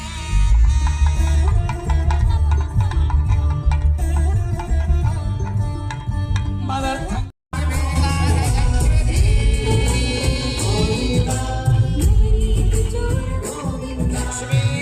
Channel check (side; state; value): both; identical; correlation 1.00